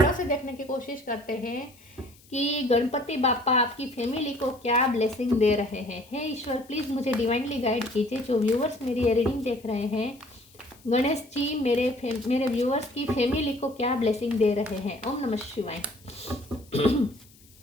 से देखने की कोशिश करते हैं कि गणपति बापा आपकी फैमिली को क्या ब्लेसिंग दे रहे हैं। हे ईश्वर, प्लीज़ मुझे डिवाइनली गाइड कीजिए। जो व्यूअर्स मेरी ये रीडिंग देख रहे हैं, गणेश जी मेरे व्यूअर्स की फैमिली को क्या ब्लेसिंग दे रहे हैं। ओम नमः शिवाय।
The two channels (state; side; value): noise; left; hiss, 27 dB below the sound